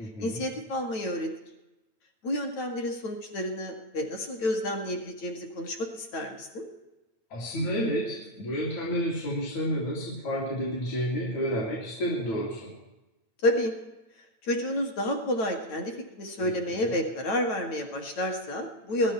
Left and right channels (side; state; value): right; late; 9.0 ms